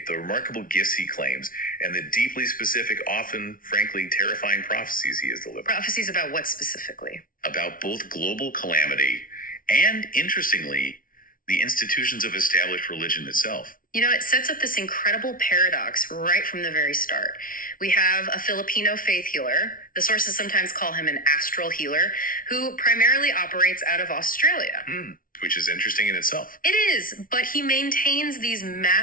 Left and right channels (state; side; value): late; right; 0.40 ms